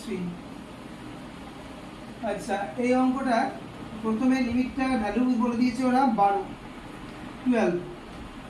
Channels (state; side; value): identical; both; correlation 1.00